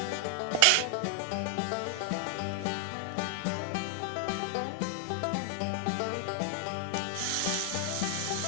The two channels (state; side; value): different; both; correlation 0.00